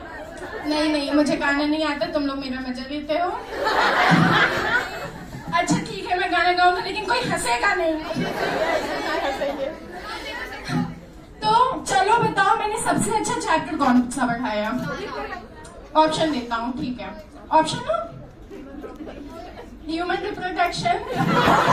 नहीं नहीं, मुझे गाना नहीं आता, तुम लोग मेरा मजा लेते हो। अच्छा ठीक है, मैं गाना गाऊंगा लेकिन कोई हंसेगा नहीं। तो चलो बताओ, मैंने सबसे अच्छा चैप्टर कौन सा पढ़ाया? ऑप्शन देता हूँ, ठीक है? ऑप्शन हो, human reproduction,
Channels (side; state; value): both; identical; correlation 1.00